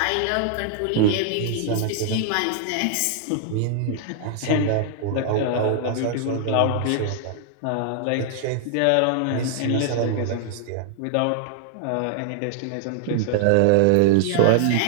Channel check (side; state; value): both; different; correlation -0.01